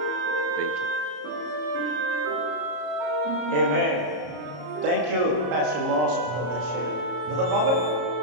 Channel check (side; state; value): left; late; 33 ms